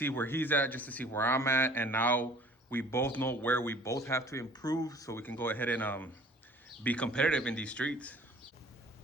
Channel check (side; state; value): both; normal; correlation 0.51